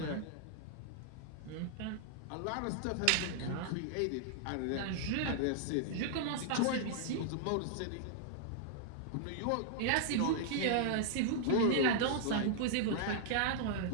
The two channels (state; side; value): different; both; correlation -0.01